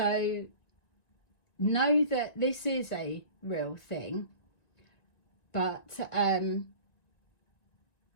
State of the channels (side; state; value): right; late; 1.9 ms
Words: know that this is a real thing, but